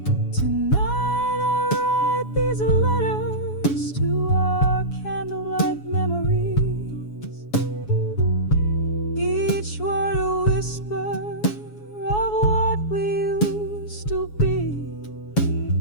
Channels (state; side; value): late; right; 7.1 ms